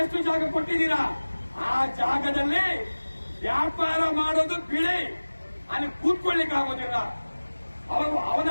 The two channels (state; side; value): inverted; both; correlation -1.00